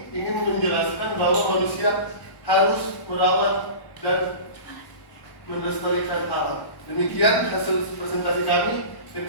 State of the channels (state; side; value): late; right; 1.1 ms